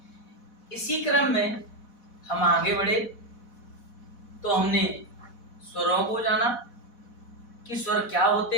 इसी क्रम में हम आगे बढ़े तो हमने स्वरों को जाना कि स्वर क्या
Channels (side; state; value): right; late; 4.1 ms